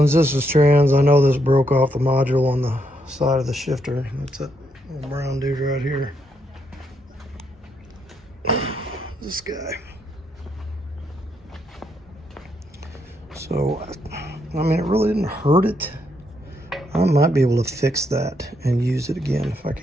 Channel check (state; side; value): normal; both; correlation 0.77